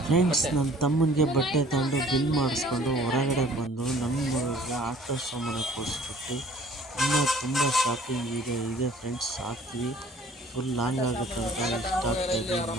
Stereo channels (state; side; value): normal; both; correlation 0.53